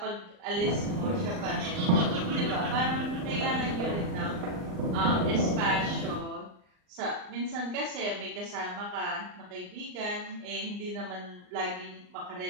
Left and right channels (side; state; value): left; late; 39 ms